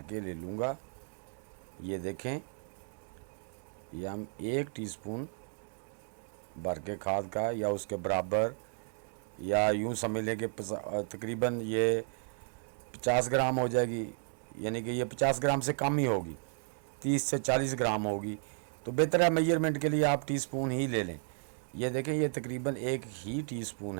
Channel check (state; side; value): silent; left; 55 dB below the other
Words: के ले लूँगा। ये देखें, ये हम 1 टीस्पून भर के खाद का या उसके बराबर, या यूँ समझ लें कि तकरीबन ये 50 ग्राम हो जाएगी। यानी कि ये 50 ग्राम से कम ही होगी, 30 से 40 ग्राम होगी। तो बेहतर है मेजरमेंट के लिए आप टीस्पून ही ले लें। ये देखें, ये तकरीबन 1 ही टीस्पून